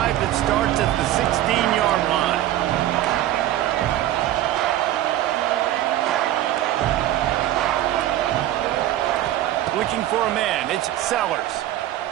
that starts at the 16-yard line. Looking for a man, it's Sellers.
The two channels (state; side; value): quieter; left; 13.5 dB